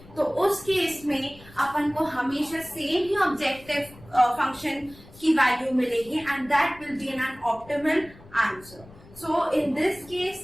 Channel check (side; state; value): left; noise; rumble, 22 dB below the sound